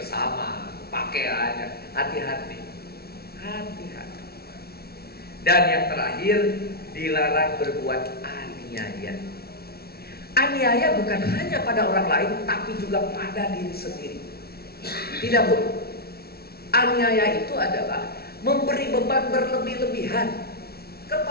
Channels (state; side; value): late; right; 0.45 ms